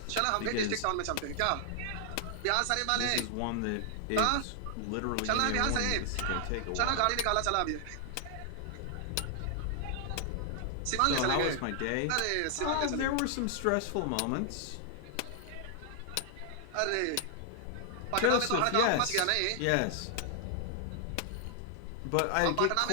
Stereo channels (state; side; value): different; both; correlation 0.00